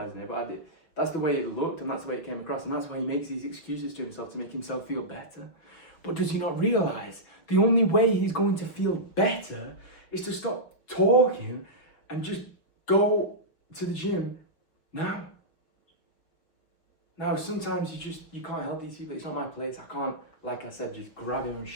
it, but that's the way it looked and that's the way it came across, and that's why he makes these excuses to himself to make himself feel better. But does he not realize the only way he's going to feel better is to stop talking and just go to the gym now? Now, sometimes you can't help these people. It's not my place. I can't, like I said, just grab him and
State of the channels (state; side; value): late; right; 6.1 ms